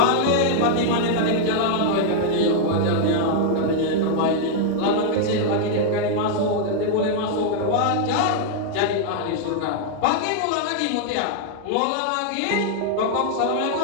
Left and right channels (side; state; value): both; different; correlation -0.01